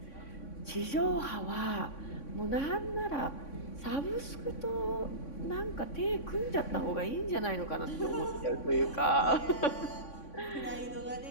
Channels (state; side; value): late; right; 3.6 ms